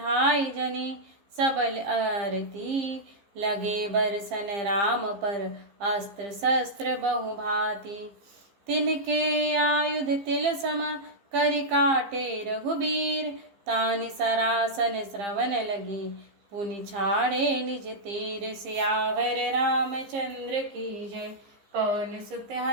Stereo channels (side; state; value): left; late; 15 ms